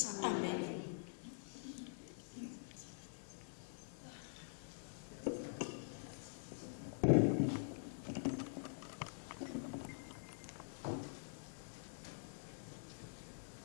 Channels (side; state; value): right; silent; digital silence